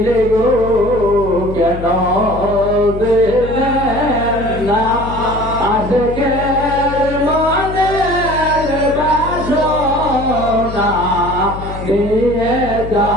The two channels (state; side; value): noise; left; hum, 9 dB below the sound